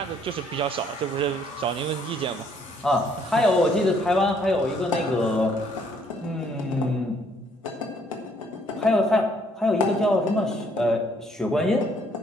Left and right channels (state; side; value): normal; both; correlation 0.65